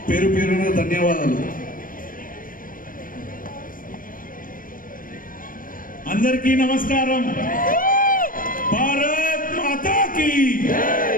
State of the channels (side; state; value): right; late; 0.40 ms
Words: పేరు పేరున ధన్యవాదాలు. అందరికీ నమస్కారం. భారత్ మాతాకి,